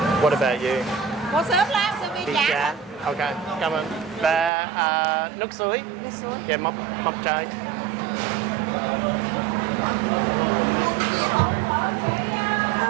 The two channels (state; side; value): drops out; left; at 4.5 s